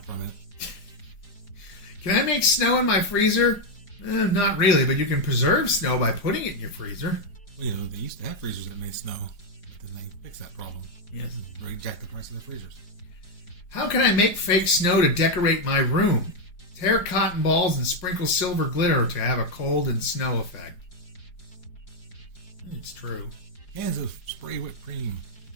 from it. Can I make snow in my freezer? Not really, but you can preserve snow by putting it in your freezer. Well, you know, they used to have freezers that made snow, but then they fixed that problem. Yes. They jacked the price of the freezers. How can I make fake snow to decorate my room? Tear cotton balls and sprinkle silver glitter to have a cold and snow effect. It's true. Cans of spray whipped cream.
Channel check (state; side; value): late; right; 4.9 ms